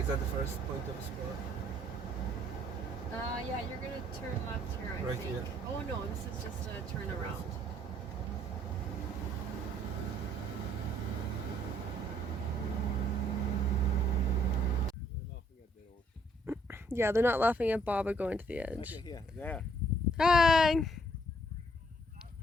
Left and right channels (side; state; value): both; normal; correlation 0.65